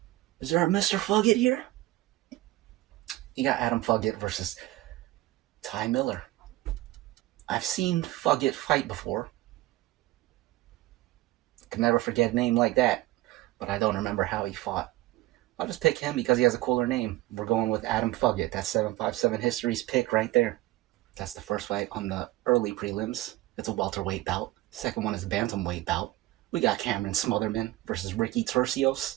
Is there a Mr. Fugit here? You got Adam Fugit versus Ty Miller. I've seen Fugit fight before. Can never forget a name like that, but I don't remember how he fought. I'll just pick him because he has a cooler name. We're going with Adam Fugit. That's 757 History's pick right there. That's the first fight on the early prelims. It's a welterweight bout. Second one is a bantamweight bout. We got Cameron Smotherman versus Ricky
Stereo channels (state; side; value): quieter; left; 17.4 dB